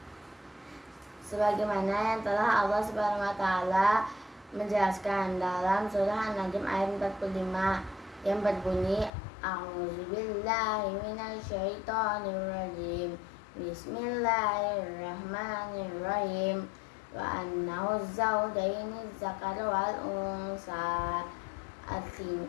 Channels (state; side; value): drops out; right; at 9.1 s